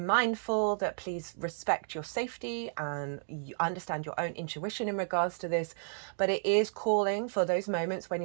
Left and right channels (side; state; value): left; silent; digital silence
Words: that please respect your safety and you understand your own intuition in regards to this. But it is calling for those moments when